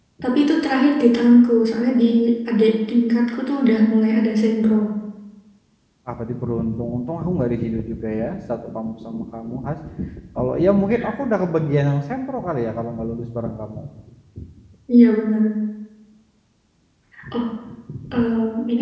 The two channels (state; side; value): identical; both; correlation 1.00